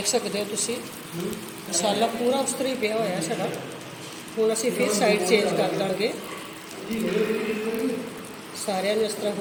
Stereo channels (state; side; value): identical; both; correlation 1.00